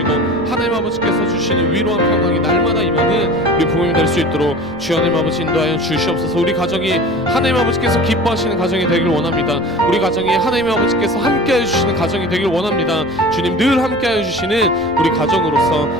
하나님 아버지께서 주시는 위로와 평강이 날마다 임하는 우리 부모님 될 수 있도록 주여 하나님 아버지 인도하여 주시옵소서. 우리 가정이 하나님 아버지께서 기뻐하시는 가정이 되길 원합니다. 우리 가정이 하나님 아버지께서 함께해 주시는 가정이 되길 원합니다. 주님 늘 함께해 주시는 우리 가정으로서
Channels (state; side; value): noise; right; rumble, 22 dB below the sound